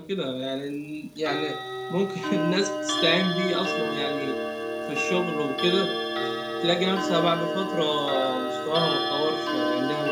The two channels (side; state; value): both; identical; correlation 1.00